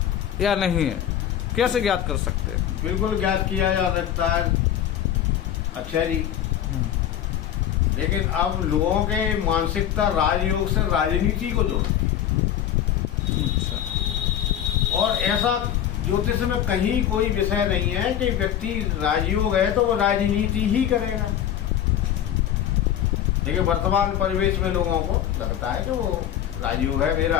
या नहीं है? कैसे ज्ञात कर सकते हैं? बिल्कुल ज्ञात किया जा सकता है। अच्छा जी, लेकिन अब लोगों के मानसिकता राजयोग से राजनीति को जोड़ती है। अच्छा। और ऐसा ज्योतिष में कहीं कोई विषय नहीं है कि व्यक्ति राजयोग है तो वो राजनीति ही करेगा। देखिए, वर्तमान परिवेश में लोगों को लगता है कि वो राजयोग है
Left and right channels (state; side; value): quieter; right; 10.5 dB